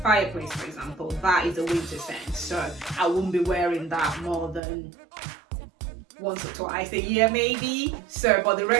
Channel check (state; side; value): drops out; left; at 4.6 s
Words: for example, that is a winter scent, so I wouldn't be wearing that more than once or twice a year maybe. So, but the